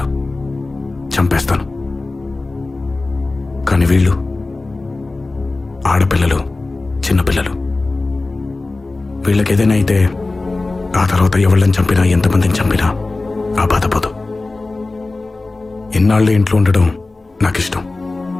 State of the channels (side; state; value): right; quieter; 3.3 dB